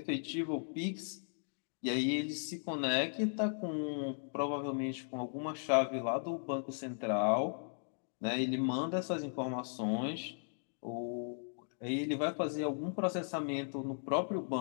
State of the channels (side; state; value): right; silent; digital silence